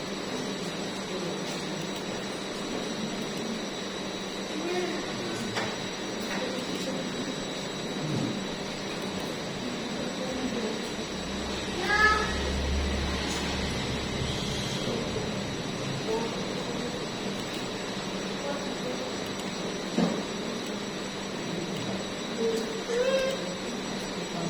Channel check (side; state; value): both; identical; correlation 1.00